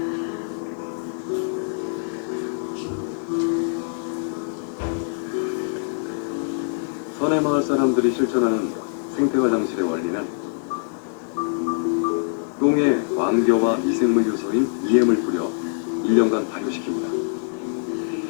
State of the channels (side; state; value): right; silent; digital silence